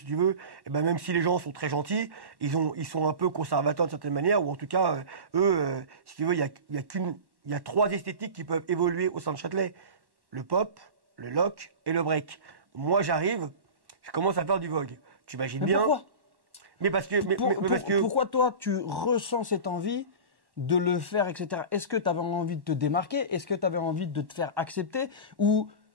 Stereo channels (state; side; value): late; left; 1.1 ms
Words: tu veux, eh ben, même si les gens sont très gentils, ils sont un peu conservateurs de certaine manière, ou en tout cas, eux, si tu veux, il y a trois esthétiques qui peuvent évoluer au sein de Châtelet. Le pop, le lock et le break. Moi, j'arrive, je commence à faire du vogue. Tu imagines bien. Pourquoi? Mais parce que, pourquoi toi, tu ressens cette envie de le faire, etc. Est-ce que tu avais envie de te démarquer? Est-ce que tu avais envie de te faire accepter? Ou